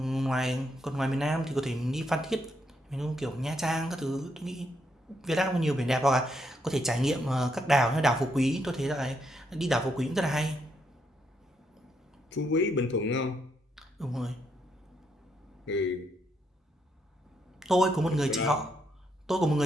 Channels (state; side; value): normal; both; correlation 0.77